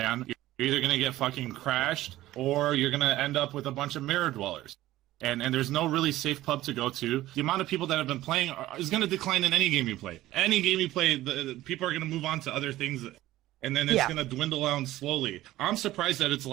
on. You're either going to get fucking crashed or you're going to end up with a bunch of mirror dwellers. And there's no really safe pub to go to. The amount of people that have been playing is going to decline in any game you play. Any game you play, the people are going to move on to other things, and then it's going to dwindle down slowly. I'm surprised that it's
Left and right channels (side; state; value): left; quieter; 15.7 dB